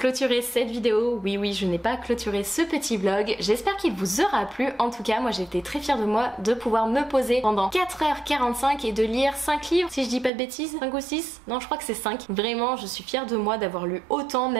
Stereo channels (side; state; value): left; drops out; at 10.3 s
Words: cette vidéo. Oui, je n'ai pas clôturé ce petit vlog. J'espère qu'il vous aura plu. En tout cas, moi j'ai été très fière de moi de pouvoir me poser pendant 4h45 et de lire 5 livres, si je dis pas de bêtises. 5 ou 6? Non, je crois que c'est 5. Vraiment, je suis fière de moi d'avoir lu autant,